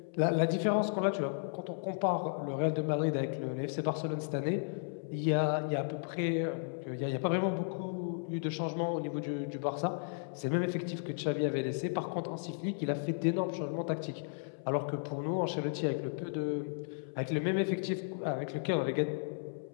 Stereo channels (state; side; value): silent; right; 55 dB below the other